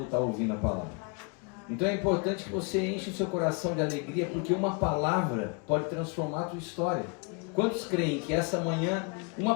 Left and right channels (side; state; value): right; quieter; 34.4 dB